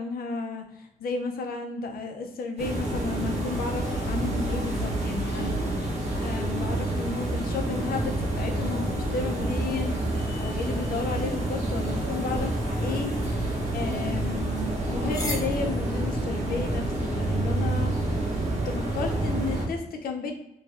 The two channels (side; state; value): both; normal; correlation 0.66